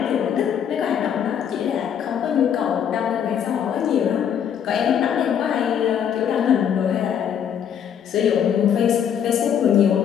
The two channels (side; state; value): right; quieter; 8.6 dB